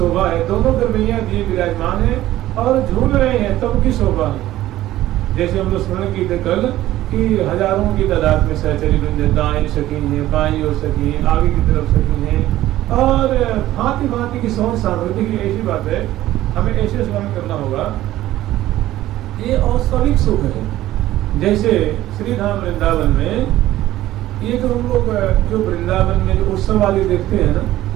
है, दोनों गरबैया दिए विराजमान है और झूल रहे हैं, तब की शोभा है। जैसे हम लोग स्मरण की थे कल कि हजारों की तादाद में सहचरी वृंद, दाएं सखी है, बाई और सखी है, आगे की तरफ सखी है और भांति भांति की सौंध सामग्री की। ऐसी बात है, हमें ऐसे स्मरण करना होगा। ये औस्वाभिक सुख है। जैसे श्री धाम वृंदावन में ये जो हम लोग जो वृंदावन में जो उत्सव वाले देखते हैं ना,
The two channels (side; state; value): left; quieter; 14.8 dB